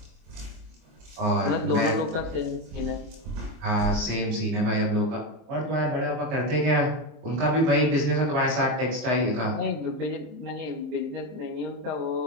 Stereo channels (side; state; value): left; late; 24 ms